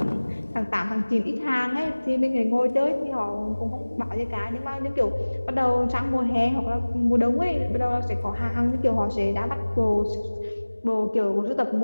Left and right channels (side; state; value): both; inverted; correlation -1.00